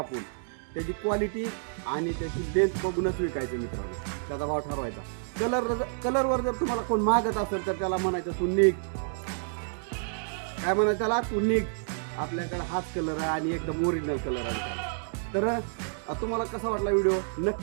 त्याची क्वालिटी आणि त्याची लेंथ बघूनच विकायचं मित्रांनो, त्याचा भाव ठरवायचा. कलरवर जर तुम्हाला कोण मागत असेल तर त्याला म्हणायचं तू निघ. काय म्हणायचं त्याला, तू निघ, आपल्याकडे हाच कलर आहे आणि एकदम ओरिजिनल कलर आहे. तर तुम्हाला कसा वाटला व्हिडिओ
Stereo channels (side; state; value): left; silent; digital silence